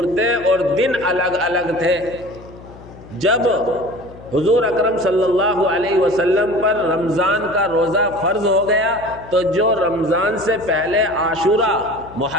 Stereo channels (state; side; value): noise; left; hum, 19 dB below the sound